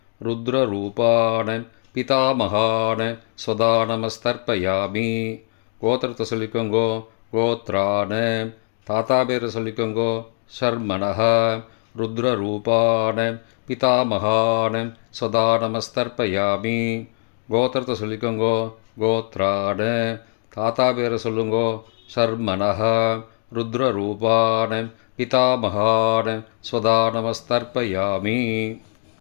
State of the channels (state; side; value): silent; right; digital silence